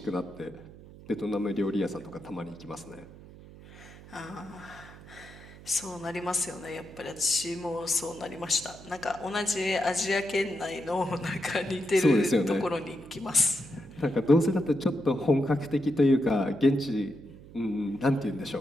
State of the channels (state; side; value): noise; right; hum, 18 dB below the sound